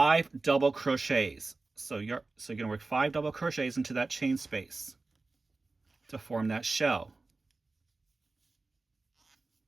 double crochets. So you're going to work 5 double crochets into that chain space to form that shell.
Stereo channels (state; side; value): quieter; left; 3.5 dB